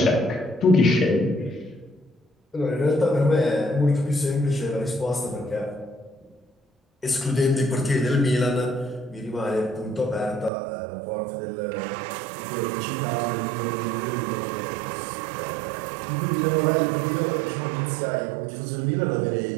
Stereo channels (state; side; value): drops out; left; at 10.5 s